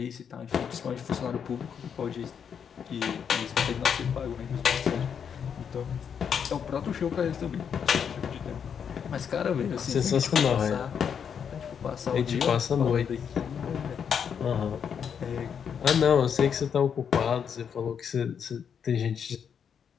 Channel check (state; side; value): quieter; right; 7.5 dB